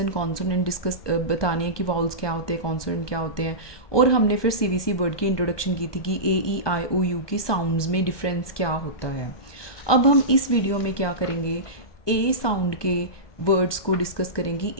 कॉन्सोनेंट डिस्कस बताने हैं कि वाउल्स क्या होते हैं, कॉन्सोनेंट क्या होते हैं। और हमने फिर CBC वर्ड की इंट्रोडक्शन की थी कि AEIOU की साउंड्स में डिफरेंस क्या होता है। अब हम इस वीडियो में क्या करेंगे, ए साउंड के वर्ड्स को डिस्कस करेंगे।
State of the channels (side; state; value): right; late; 1.2 ms